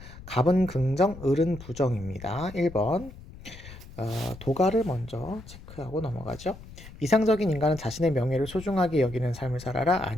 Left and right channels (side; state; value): left; noise; rumble, 16 dB below the sound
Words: 갑은 긍정, 을은 부정입니다. 1번 도가를 먼저 체크하고 넘어가죠. 이상적인 인간은 자신의 명예를 소중하게 여기는 삶을 살아라?